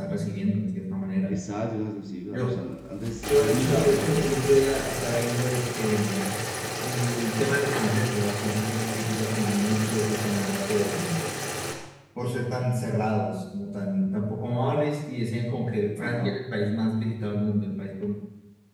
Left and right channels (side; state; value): both; identical; correlation 1.00